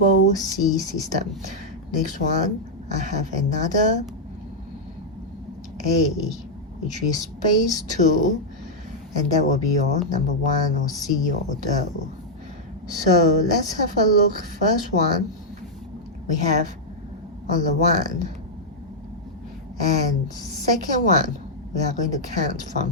C system. Next one, I have another A, which is space 2, and that will be your number 1 or C or do. So let's have a look. First one, we have on the 1, and second one, we are going to count from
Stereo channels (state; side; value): normal; both; correlation -0.05